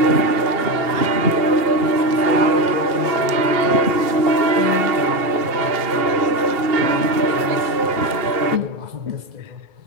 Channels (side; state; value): left; late; 2.7 ms